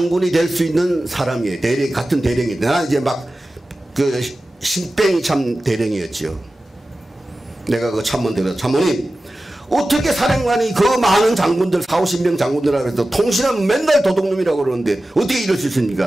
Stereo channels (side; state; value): both; normal; correlation 0.95